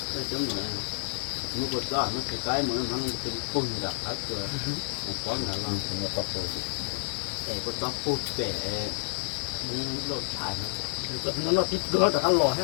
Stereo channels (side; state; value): right; silent; 58 dB below the other